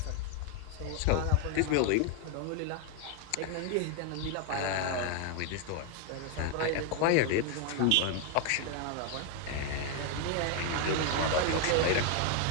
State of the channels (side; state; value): both; different; correlation 0.01